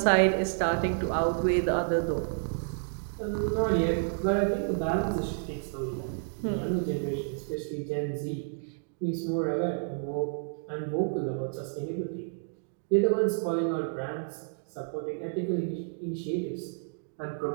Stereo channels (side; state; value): left; silent; digital silence